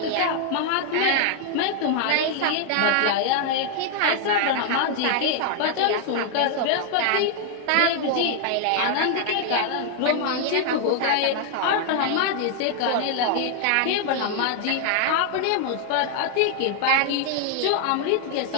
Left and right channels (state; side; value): different; both; correlation 0.00